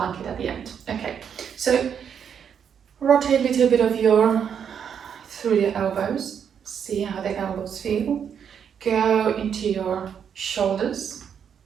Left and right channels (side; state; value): left; quieter; 7.8 dB